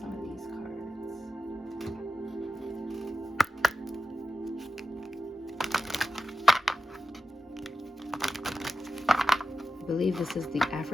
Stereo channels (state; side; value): normal; both; correlation 0.92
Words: some of these cards. I believe this is the